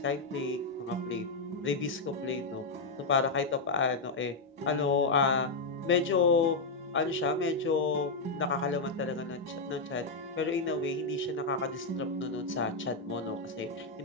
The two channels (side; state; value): right; quieter; 3.6 dB